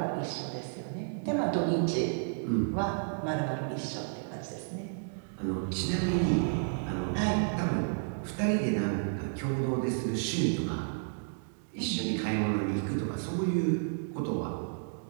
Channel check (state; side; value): silent; left; digital silence